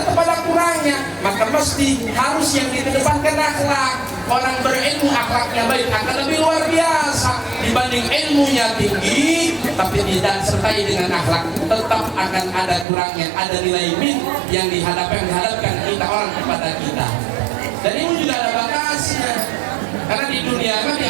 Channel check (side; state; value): left; drops out; at 12.9 s